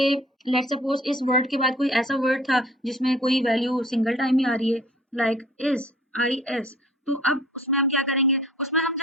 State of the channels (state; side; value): normal; both; correlation 0.52